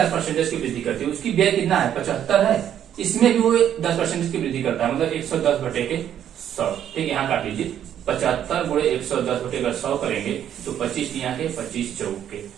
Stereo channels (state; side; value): quieter; left; 10.1 dB